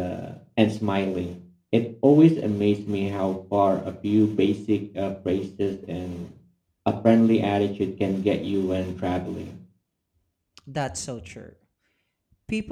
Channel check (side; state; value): both; identical; correlation 1.00